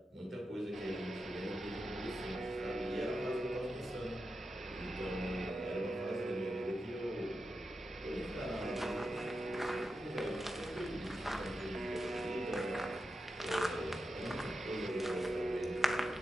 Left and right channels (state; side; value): normal; both; correlation 0.89